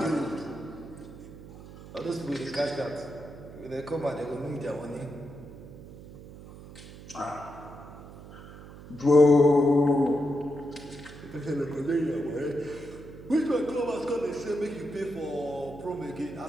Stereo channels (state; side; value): noise; right; hum, 16 dB below the sound